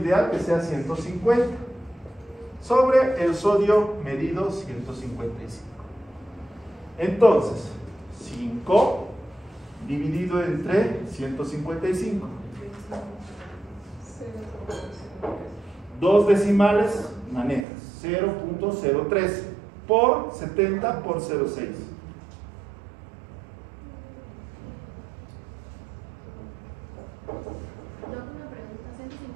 que sea 150 sobre el sodio medido 155. Entonces 5 dividido entre 155, 2 decimales manejas, 0.013 por 70 por 0.6.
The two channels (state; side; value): drops out; left; at 17.7 s